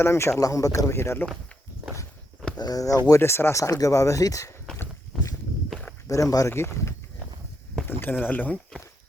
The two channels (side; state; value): both; normal; correlation 0.79